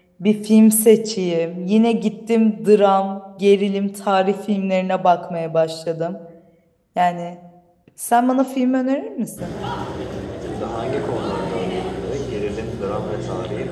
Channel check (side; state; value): both; identical; correlation 1.00